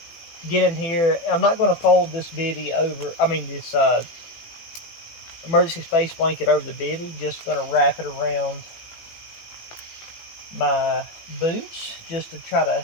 get in here. I'm not going to fold this bivy over. This emergency space blanket over the bivy. Just going to wrap it around my boots just to try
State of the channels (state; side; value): late; right; 18 ms